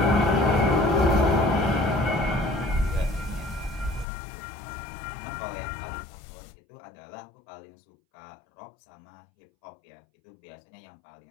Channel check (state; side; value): drops out; right; at 4.0 s